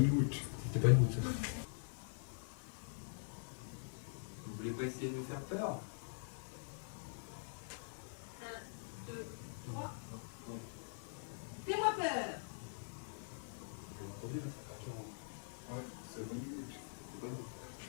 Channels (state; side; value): silent; right; digital silence